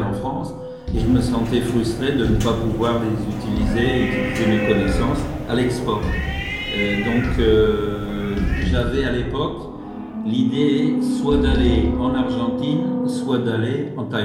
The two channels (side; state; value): both; identical; correlation 1.00